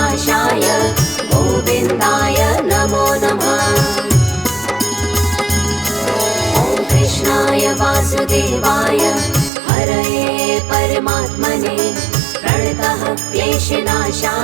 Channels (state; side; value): drops out; left; at 9.5 s